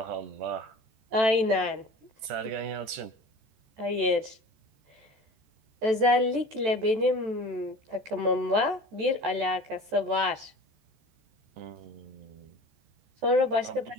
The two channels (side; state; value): left; late; 14 ms